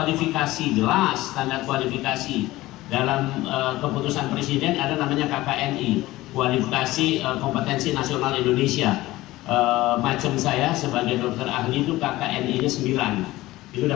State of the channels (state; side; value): quieter; right; 17.8 dB